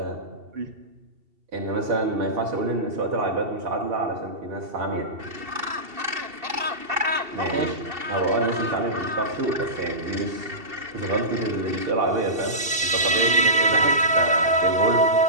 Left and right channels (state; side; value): late; left; 2.7 ms